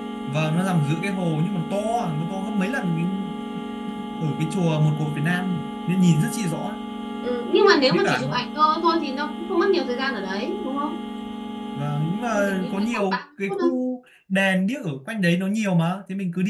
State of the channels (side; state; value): both; identical; correlation 1.00